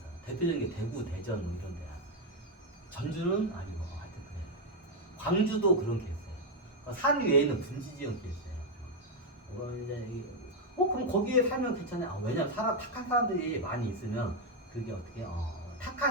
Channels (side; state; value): both; normal; correlation 0.03